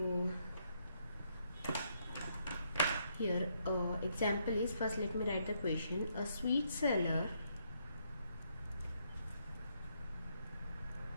here example is, first let me write the question. A sweet seller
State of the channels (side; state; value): both; inverted; correlation -0.74